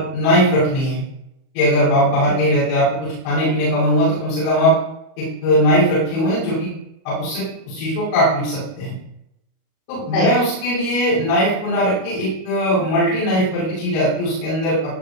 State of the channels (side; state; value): right; late; 37 ms